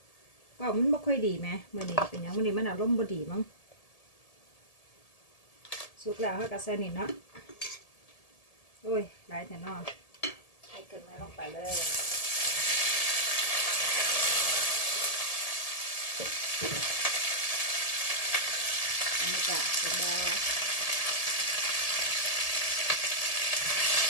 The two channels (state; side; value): late; right; 1.7 ms